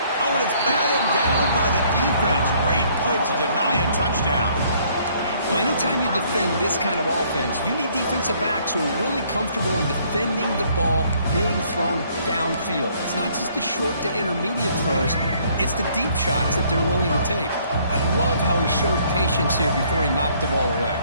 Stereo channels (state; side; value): inverted; both; correlation -0.63